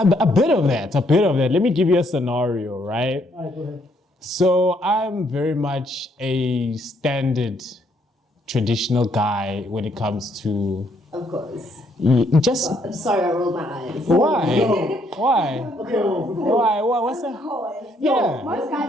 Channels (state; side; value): normal; both; correlation 0.70